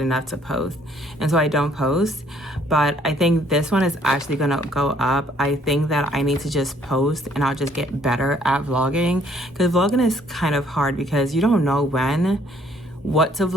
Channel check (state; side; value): normal; both; correlation 0.64